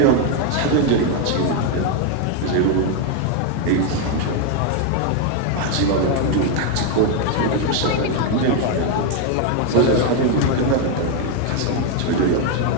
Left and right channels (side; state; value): both; different; correlation 0.01